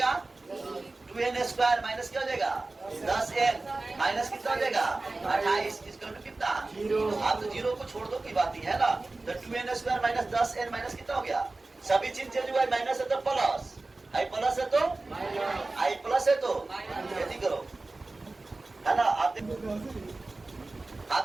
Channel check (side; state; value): left; quieter; 3.2 dB